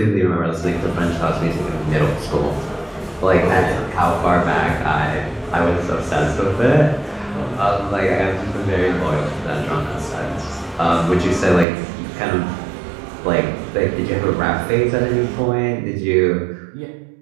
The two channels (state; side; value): drops out; left; at 11.7 s